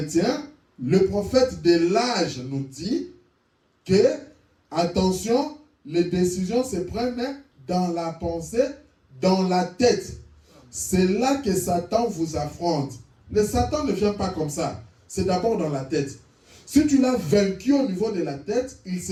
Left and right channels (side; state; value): both; identical; correlation 1.00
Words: le prophète de l'âge nous dit que, attention, les décisions se prennent dans la pensée, dans la tête. C'est là que Satan vous affronte. Le Satan ne vient pas comme ça. C'est d'abord dans la tête. Si tu l'as vaincu au niveau de la tête, il